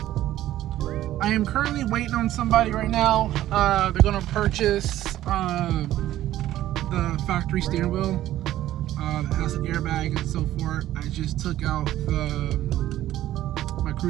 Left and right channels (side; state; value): left; quieter; 13.8 dB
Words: I am currently waiting on somebody right now. They're gonna purchase the factory steering wheel that has an airbag and so forth. I just took out my